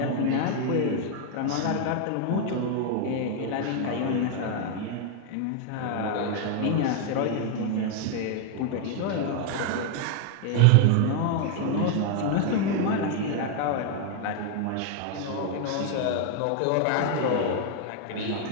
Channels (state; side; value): different; both; correlation 0.00